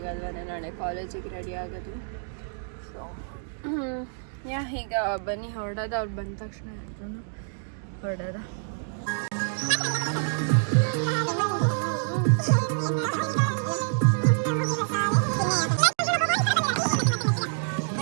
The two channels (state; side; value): silent; left; digital silence